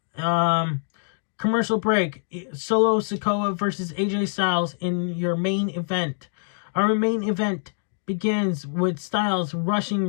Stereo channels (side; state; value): right; silent; digital silence